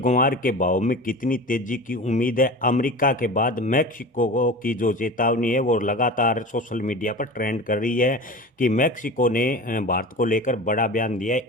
ग्वार के भाव में कितनी तेजी की उम्मीद है? अमेरिका के बाद मैक्सिको की जो चेतावनी है वो लगातार सोशल मीडिया पर ट्रेंड कर रही है कि मैक्सिको ने भारत को लेकर बड़ा बयान दिया है।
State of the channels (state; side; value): normal; both; correlation 0.33